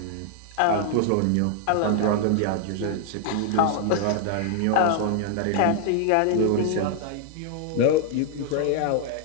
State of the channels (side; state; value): both; different; correlation 0.00